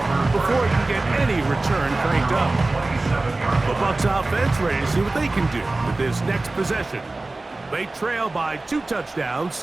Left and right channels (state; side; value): quieter; left; 3.1 dB